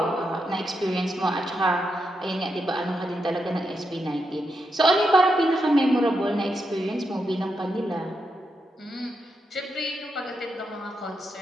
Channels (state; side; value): normal; both; correlation 0.84